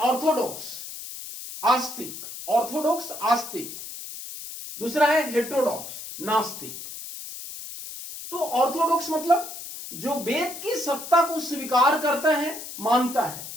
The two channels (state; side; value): noise; left; hiss, 10 dB below the sound